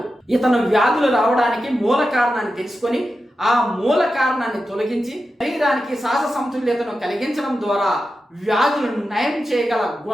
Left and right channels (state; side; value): normal; both; correlation 0.91